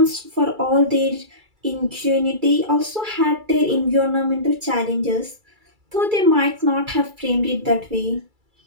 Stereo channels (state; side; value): late; left; 2.3 ms